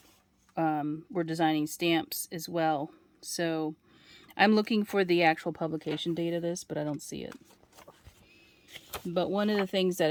were designing stamps as well. So I'm looking for the actual publication date of this, but I don't see it. But one of the things that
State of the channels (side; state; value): both; identical; correlation 1.00